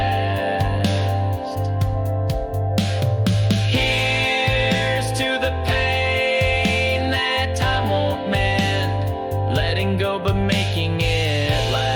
Here's to the pain that time won't mend, letting go but making it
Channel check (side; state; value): both; identical; correlation 1.00